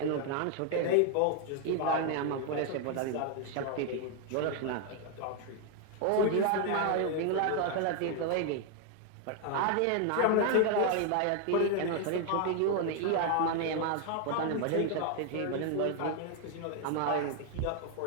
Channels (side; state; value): both; different; correlation 0.00